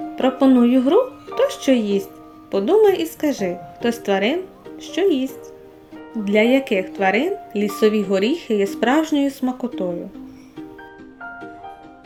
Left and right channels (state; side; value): identical; both; correlation 1.00